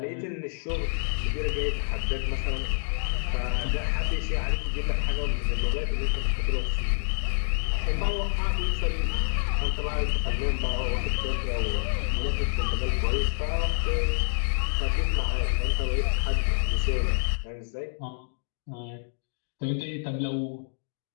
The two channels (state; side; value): silent; right; digital silence